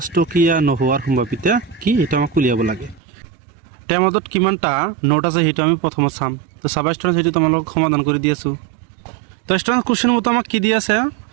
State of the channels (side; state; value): left; drops out; at 3.0 s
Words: টকীয়া নোহোৱাৰ সম্ভাৱিতা কি, এটা আমাক উলিয়াব লাগে। টেমাটোত কিমানটা নোট আছে সেইটো আমি প্ৰথমত চাম। তো চাবা ষ্টুডেণ্টছ, সেইটো তোমালোকক সমাধান কৰি দি আছোঁ। তো ষ্টুডেণ্টছ কুৱেশ্যন মতে আমাক কি দি আছে,